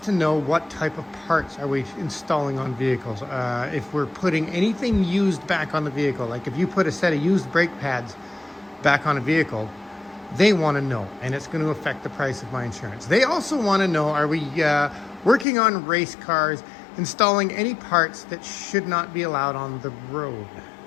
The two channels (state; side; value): drops out; right; at 15.5 s